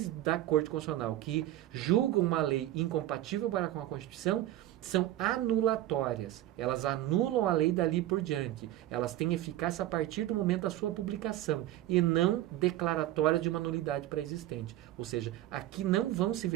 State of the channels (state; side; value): quieter; left; 14.3 dB